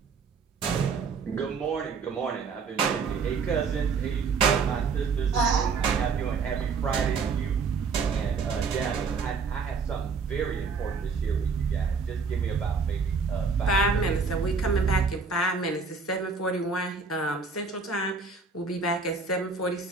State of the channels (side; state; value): left; quieter; 5.0 dB